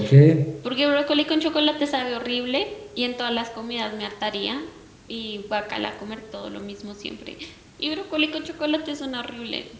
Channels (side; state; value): both; identical; correlation 1.00